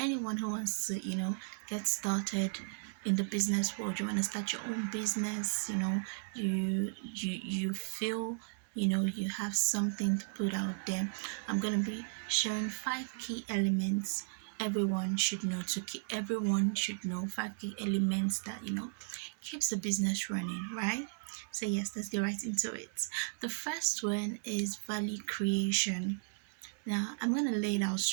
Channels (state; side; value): silent; left; digital silence